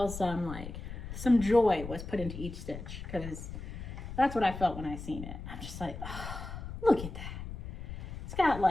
some joy was put into each stitch because that's what I felt when I seen it. I'm just like, oh, look at that. It's got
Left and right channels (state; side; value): noise; left; rumble, 9 dB below the sound